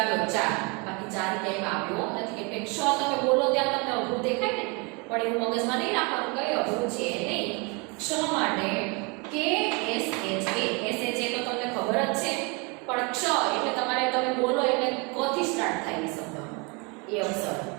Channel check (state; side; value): quieter; left; 30.8 dB